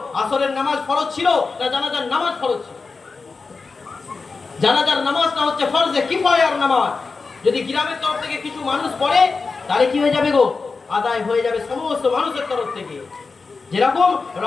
আসরের নামাজ ফরজ ছিল না জানাজার নামাজ ফরজ ছিল? জানাজার নামাজটা হচ্ছে ফরজে কিফায়ার নামাজ। যদি গ্রামের তরফ থেকে কিছু মানুষ পড়ে তাহলে কি হয়ে যাবে গো? আদায় হয়ে যাবে সমস্ত মানুষের তরফ থেকে। যেরকম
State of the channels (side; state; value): right; quieter; 4.4 dB